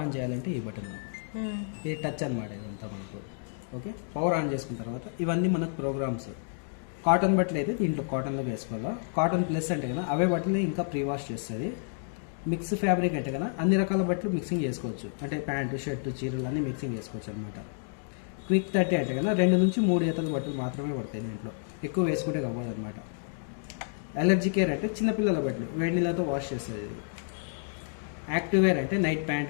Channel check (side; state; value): right; silent; digital silence